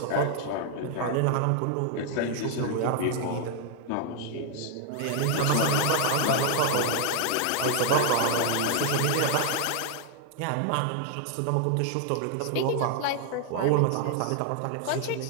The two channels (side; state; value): both; different; correlation 0.00